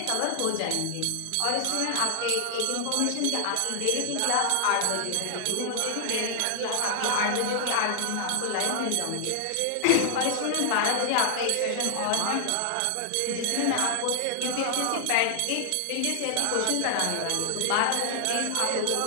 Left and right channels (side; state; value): both; different; correlation 0.00